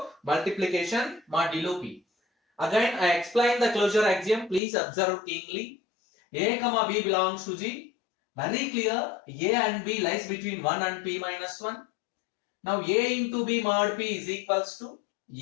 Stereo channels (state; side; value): drops out; right; at 4.6 s